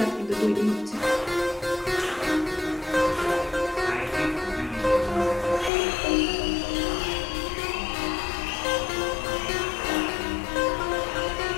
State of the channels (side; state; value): right; drops out; at 5.7 s